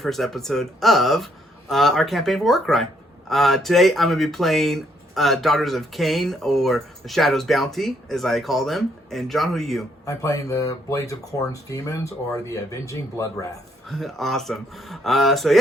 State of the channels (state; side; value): normal; both; correlation 0.70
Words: episode of our campaign for Warcry. Today I'm going to be playing Daughters of Khaine, or the Shadow's Bounty, as I call them. And John, who are you? I'm playing the Blades of Khorne's Demons, or the Avenging Bloodwrath. Awesome. So